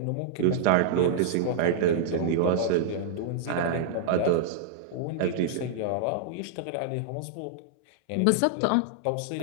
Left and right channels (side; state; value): both; different; correlation -0.01